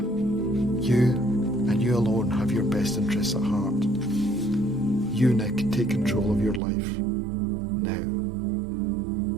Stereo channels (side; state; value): left; drops out; at 6.6 s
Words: You and you alone have your best interests at heart. You, Nick, take control of your life. Now,